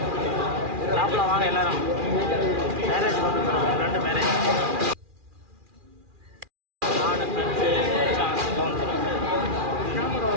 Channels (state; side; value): late; left; 2.4 ms